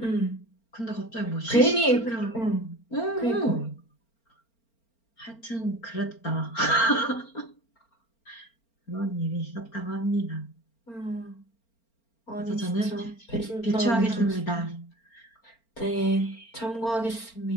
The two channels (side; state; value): right; late; 4.4 ms